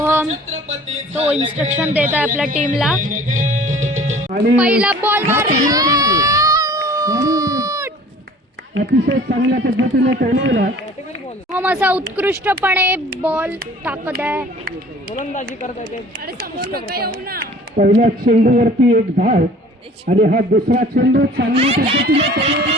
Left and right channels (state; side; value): normal; both; correlation 0.48